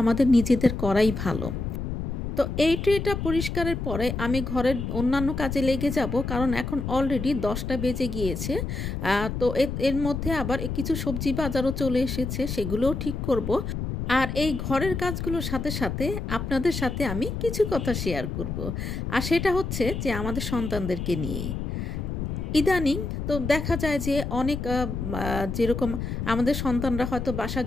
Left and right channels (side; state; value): left; noise; rumble, 4 dB below the sound